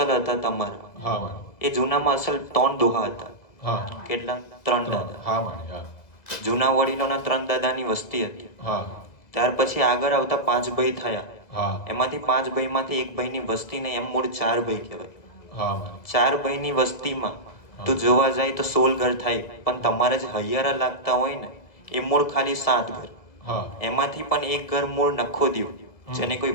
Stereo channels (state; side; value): late; right; 1.9 ms